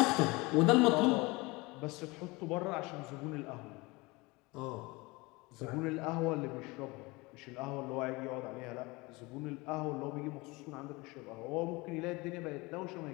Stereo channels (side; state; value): right; quieter; 24.0 dB